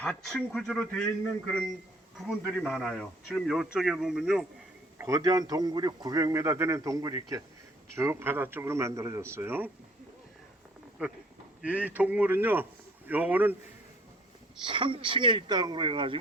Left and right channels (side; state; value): both; normal; correlation 0.58